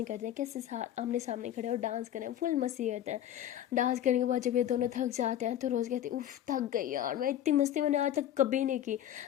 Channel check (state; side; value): quieter; right; 11.3 dB